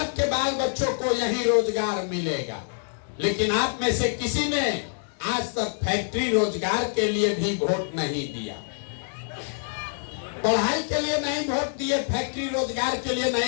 बाल बच्चों को यही रोजगार मिलेगा। लेकिन आप में से किसी ने आज तक फैक्ट्री रोजगार के लिए भी वोट नहीं दिया। पढ़ाई के लिए नहीं वोट दिए, फैक्ट्री रोजगार के लिए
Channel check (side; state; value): right; silent; digital silence